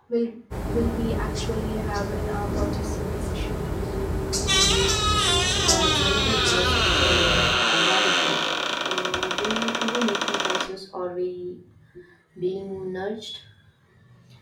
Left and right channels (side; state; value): both; identical; correlation 1.00